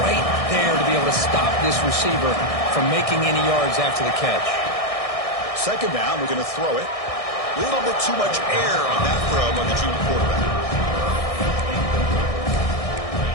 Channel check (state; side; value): late; right; 1.6 ms